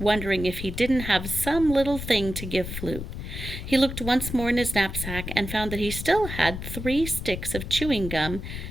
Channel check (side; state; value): left; noise; rumble, 7 dB below the sound